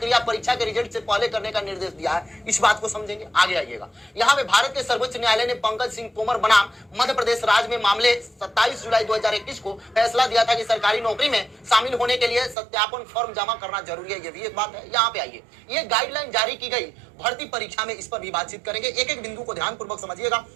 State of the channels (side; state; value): left; drops out; at 12.6 s